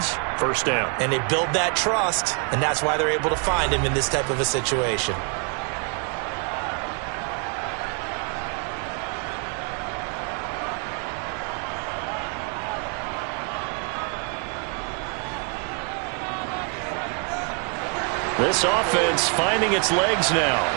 First down. And they build that trust, and that's why they're able to find him in this type of a situation. This offense finding its legs now.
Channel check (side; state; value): left; quieter; 38.2 dB